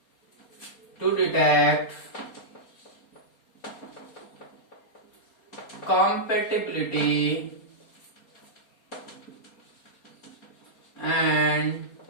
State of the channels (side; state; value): right; late; 4.3 ms